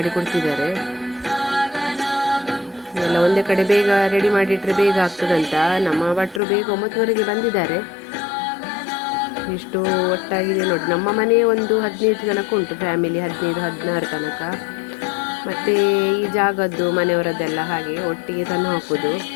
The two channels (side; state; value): right; drops out; at 6.4 s